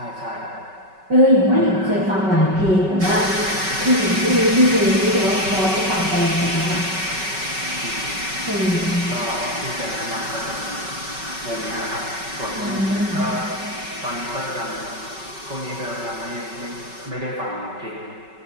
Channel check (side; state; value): left; late; 5.3 ms